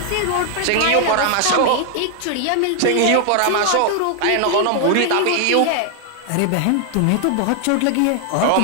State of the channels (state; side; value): different; both; correlation 0.00